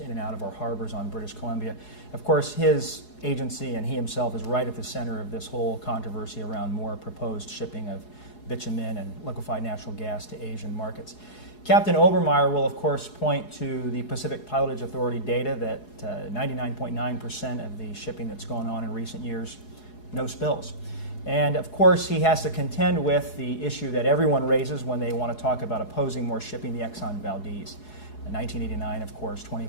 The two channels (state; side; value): late; right; 4.8 ms